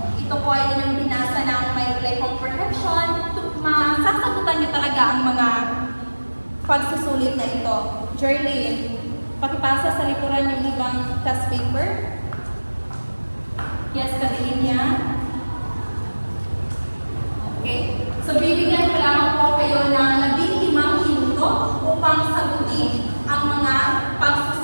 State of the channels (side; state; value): both; inverted; correlation -1.00